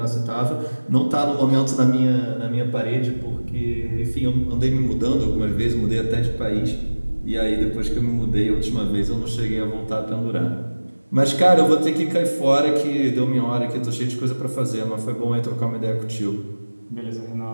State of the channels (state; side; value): inverted; both; correlation -1.00